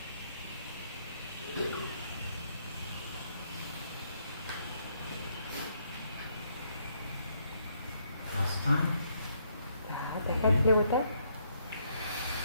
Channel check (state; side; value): inverted; both; correlation -0.71